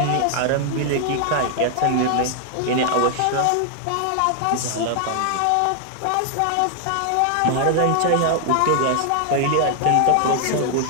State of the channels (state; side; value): different; both; correlation 0.00